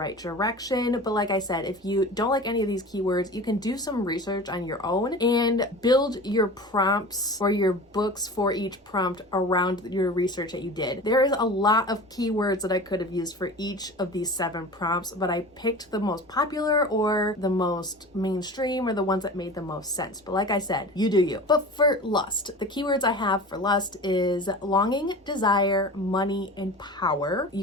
direction. But like I said, if you don't like any of these keywords, you can do some research on your own and build your prompts or your books for each prompt around your research that you did. There is a lot of keywords that I could have used for each of these 7 prompts, but I picked the most popular or the most mainstream or the ones that made the most sense. But like I said, you do you. But for lust, the keywords I have for lust is longing, desire, money, and power.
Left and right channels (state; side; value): normal; both; correlation 0.36